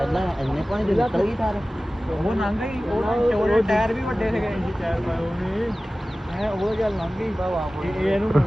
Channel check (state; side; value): normal; both; correlation 0.97